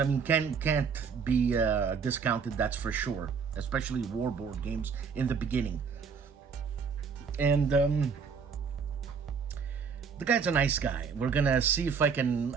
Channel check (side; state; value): left; quieter; 6.0 dB